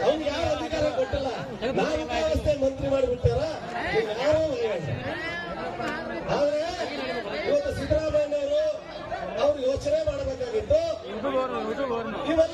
ಅವ್ನಿಗೆ ಯಾವ ಅಧಿಕಾರ ಕೊಟ್ಟಿಲ್ಲ. ನಾವಿಕ ವ್ಯವಸ್ಥೆ ಮಂತ್ರಿ ಮಾಡಿಬಿಡ್ತಾರ, ಯಾರೋ ಭಯಬೇಡ್ರ. ಆದ್ರೆ ಇವತ್ತು ಸಿದ್ದರಾಮಯ್ಯನವರು ಅವ್ರು ಯೋಚನೆ ಮಾಡಬೇಕಾಗಿತ್ತು,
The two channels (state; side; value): identical; both; correlation 1.00